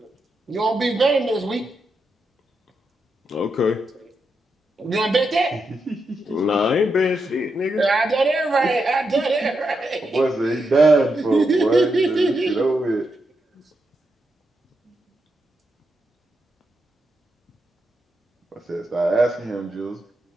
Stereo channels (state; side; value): normal; both; correlation 0.84